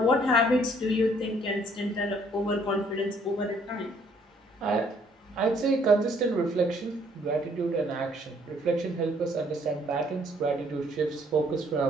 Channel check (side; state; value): both; normal; correlation 0.63